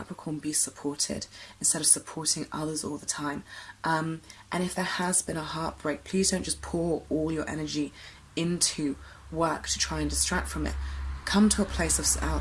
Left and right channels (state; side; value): identical; both; correlation 1.00